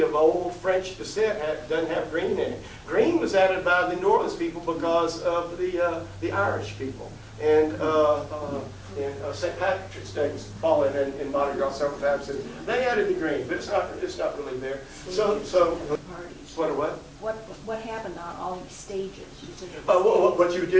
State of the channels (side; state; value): both; identical; correlation 1.00